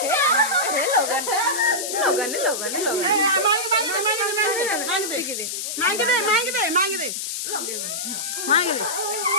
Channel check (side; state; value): left; noise; hiss, 4 dB below the sound